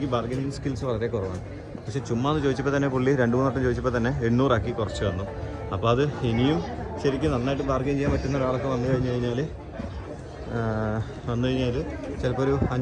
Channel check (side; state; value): both; identical; correlation 1.00